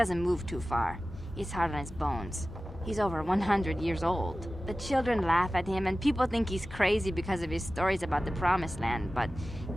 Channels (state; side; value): normal; both; correlation 0.96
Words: move too far. He's hard on his bones. He's over 100 years old. The children laugh at him, and people think he's crazy because of his stories about the Promised Land, but